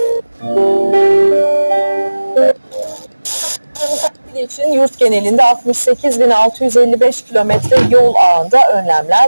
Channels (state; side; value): inverted; both; correlation -1.00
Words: için yurt genelinde 68.655 kilometre yol ağında